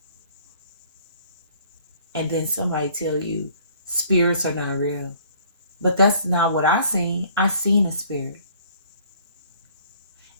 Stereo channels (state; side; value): inverted; both; correlation -0.57